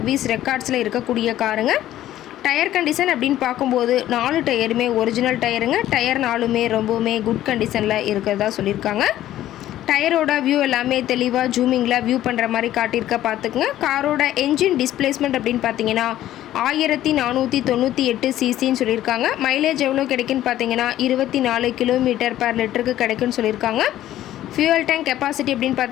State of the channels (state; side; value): quieter; right; 13.3 dB